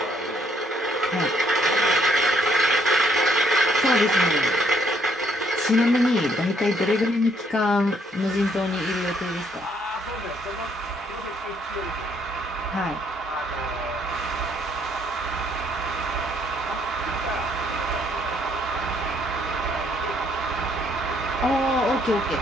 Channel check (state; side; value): normal; both; correlation 0.68